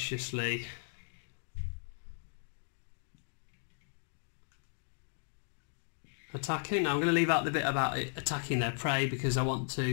attacking. Now I'm going to leave out the bit about it attacking their prey, because I want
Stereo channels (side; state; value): right; silent; digital silence